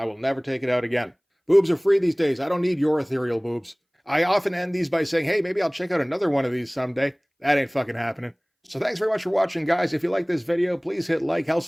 will never take it out again. Boobs are free these days. I don't need your ethereal boobs. I often end these by saying, hey, maybe I'll check out another one of these someday. That ain't fucking happening. So thanks very much for watching, guys. If you like this video, please hit like.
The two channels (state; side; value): identical; both; correlation 1.00